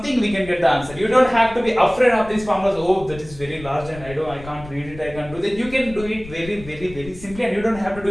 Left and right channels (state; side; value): noise; left; rumble, 16 dB below the sound